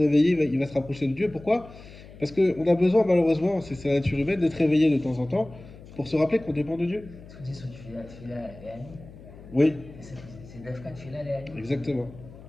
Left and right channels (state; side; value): noise; left; hum, 18 dB below the sound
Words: il va se rapprocher de Dieu. Pourquoi? Parce qu'on a besoin, malheureusement, c'est la nature humaine, d'être réveillé de temps en temps pour se rappeler qu'on dépend de Dieu. Ce qu'on dit sur Tfila Léani, Oui, c'est Dafka Tfila Léani. exactement.